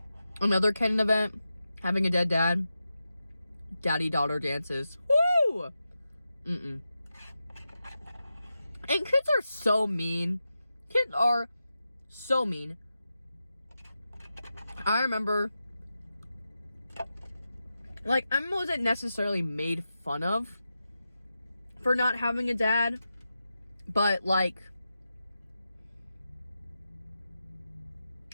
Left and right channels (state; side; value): inverted; both; correlation -0.90